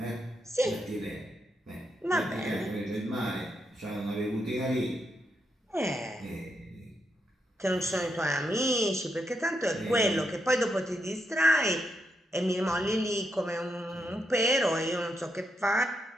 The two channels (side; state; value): both; normal; correlation 0.81